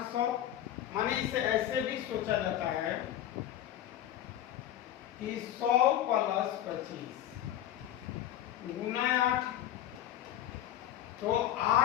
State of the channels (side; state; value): right; quieter; 12.0 dB